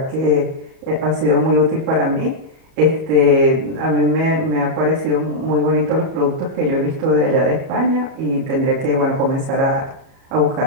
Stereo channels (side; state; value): left; late; 38 ms